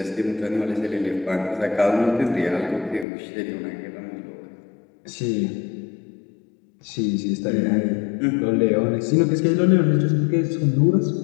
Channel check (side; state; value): right; drops out; at 3.1 s